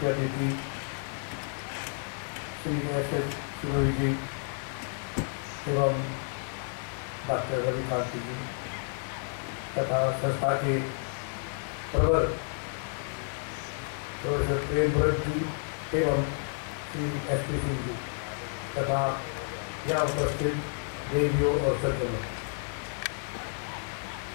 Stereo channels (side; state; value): right; silent; 57 dB below the other